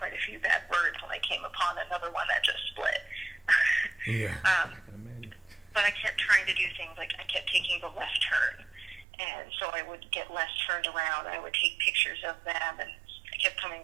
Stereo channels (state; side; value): drops out; left; at 9.1 s